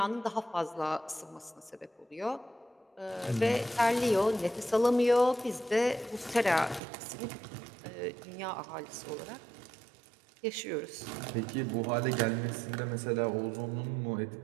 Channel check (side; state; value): left; drops out; at 6.8 s